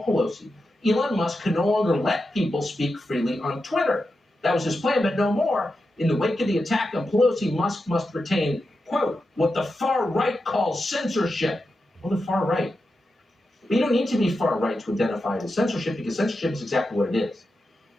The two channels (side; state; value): both; normal; correlation 0.89